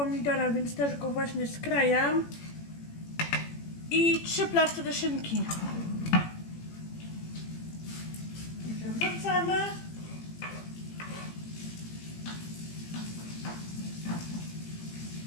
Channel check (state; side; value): late; right; 18 ms